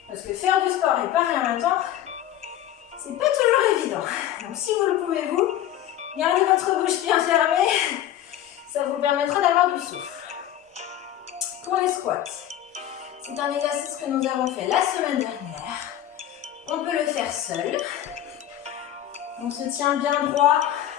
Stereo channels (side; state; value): right; quieter; 11.9 dB